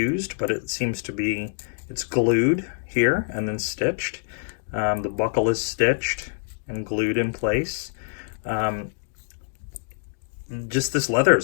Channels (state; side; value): silent; right; digital silence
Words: but it seems to be, it's glued here and then stitched. The buckle is stitched and glued in place. Just this leather